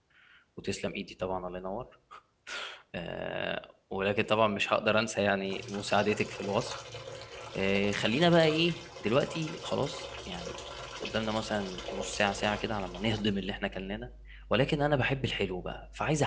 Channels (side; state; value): both; identical; correlation 1.00